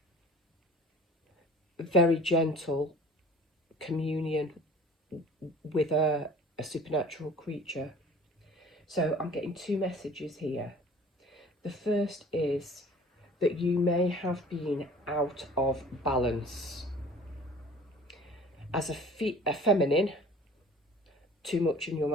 very gentle communion with a supernatural creature. So I'm getting two messages here. The first is that you may have been out of balance. As a feminine, too much in your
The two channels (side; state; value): both; normal; correlation 0.47